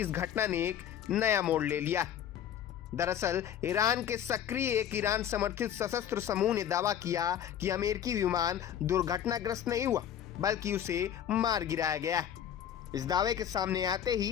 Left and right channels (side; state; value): right; quieter; 9.8 dB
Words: घटना ने एक नया मोड़ ले लिया। दरअसल ईरान के सक्रिय एक ईरान समर्थित सशस्त्र समूह ने दावा किया कि अमेरिकी विमान दुर्घटनाग्रस्त नहीं हुआ, बल्कि उसे मार गिराया गया है। इस दावे के सामने आते